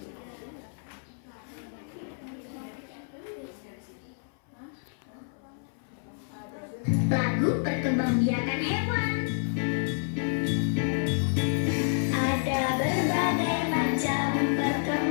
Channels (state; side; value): silent; right; 58 dB below the other